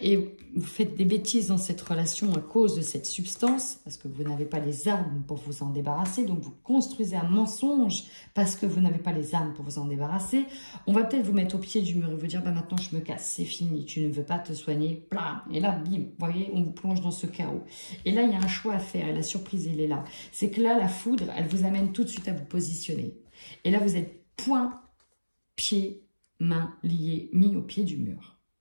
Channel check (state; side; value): inverted; both; correlation -1.00